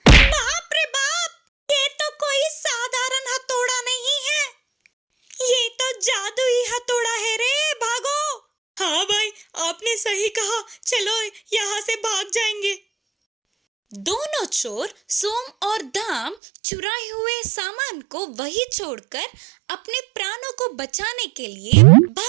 बाप रे बाप, ये तो कोई साधारण हथौड़ा नहीं है, ये तो जादुई हथौड़ा है रे, भागो। हाँ भाई, आपने सही कहा, चलो यहाँ से भाग जाएंगे। दोनों चोर सोम और दाम चुराए हुए सामान को वहीं छोड़कर अपने प्राणों को बचाने के लिए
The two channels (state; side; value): drops out; left; at 16.4 s